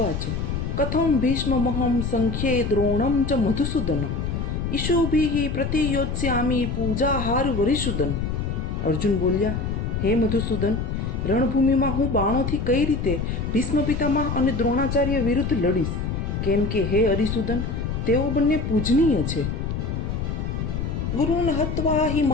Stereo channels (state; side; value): noise; left; rumble, 2 dB below the sound